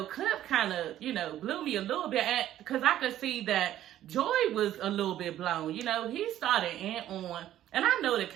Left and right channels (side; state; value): left; quieter; 12.5 dB